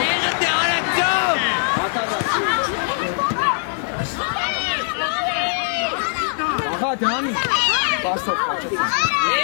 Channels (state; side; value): silent; right; 65 dB below the other